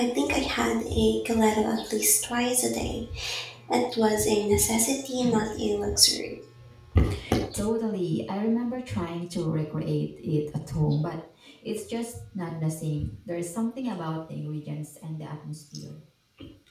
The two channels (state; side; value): identical; both; correlation 1.00